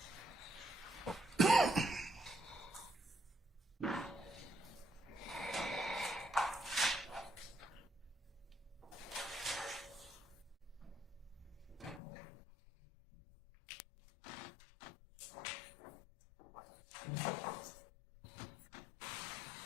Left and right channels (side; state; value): right; drops out; at 12.0 s